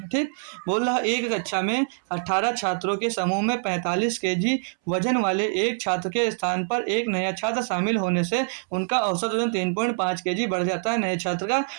ठीक। बोल रहा एक कक्षा में 18 छात्रों के समूह में 45 kg वजन वाले एक छात्र के स्थान पर एक नया छात्र शामिल होने से उनका औसत वजन 3.5 kg बढ़ जाता है। नए छात्र का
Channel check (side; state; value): left; silent; 62 dB below the other